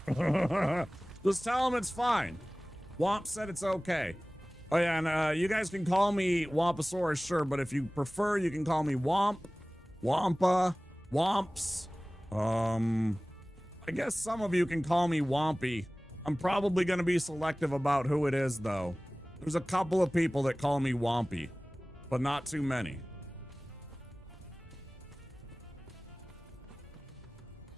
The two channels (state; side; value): normal; both; correlation 0.98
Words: Just tell him it's fine. Womp said it's okay. Oh yeah, and you guys can call me Wompasaurus, sure, but if you prefer, you can call me Womp, Wampa, Womps. I guess some of you can call me Wompy. I'm probably gonna be selective about who it is, though. There's a couple of people that call me Wompy, but not too many.